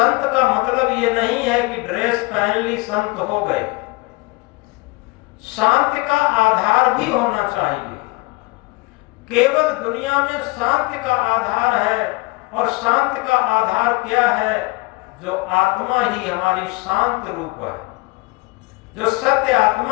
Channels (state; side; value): quieter; right; 24.1 dB